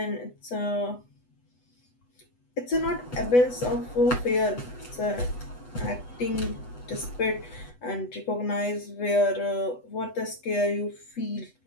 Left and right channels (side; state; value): right; late; 8.1 ms